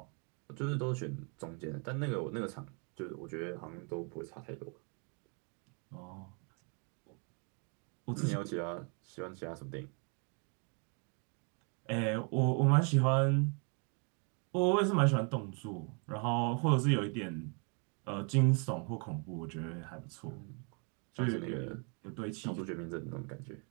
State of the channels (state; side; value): quieter; left; 37.2 dB